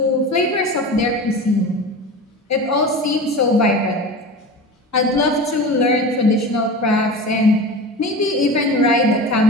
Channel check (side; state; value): both; normal; correlation 0.32